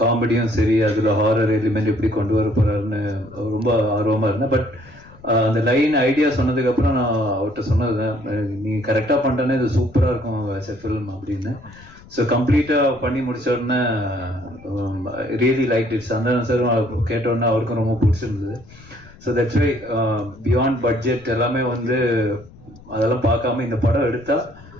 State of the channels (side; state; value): left; noise; rumble, 22 dB below the sound